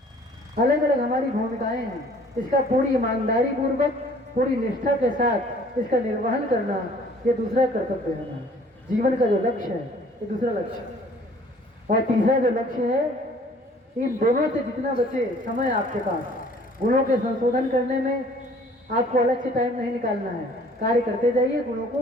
अलग अलग हमारी भूमिकाएं हैं। इसका पूरी ईमानदारी पूर्वक, पूरी निष्ठा के साथ इसका निर्वहन करना, ये दूसरा कर्तव्य है हमारा। जीवन का जो लक्ष्य है ये दूसरा लक्ष्य। और तीसरा जो लक्ष्य है, इन दोनों से जितना बचे समय आपके पास, गुणों के संशोधन करने में आपको अलग से टाइम नहीं निकालना है। कार्य करते जाइए, गुणों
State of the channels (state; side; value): normal; both; correlation 0.55